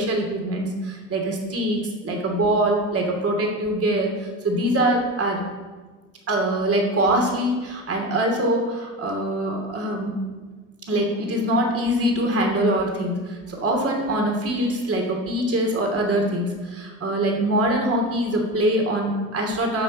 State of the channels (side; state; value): both; normal; correlation 0.26